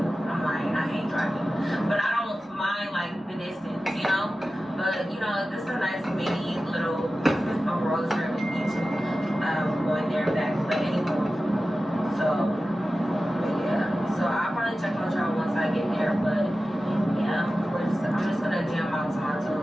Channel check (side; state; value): both; normal; correlation 0.94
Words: I'm lying. I hate driving, but I don't mind like the distance, you know. But you know, this is a nice mini little road trip each going there and back. But anyway, so. So I'll probably check on y'all once I get there, but yeah, I'm just gonna jam out to my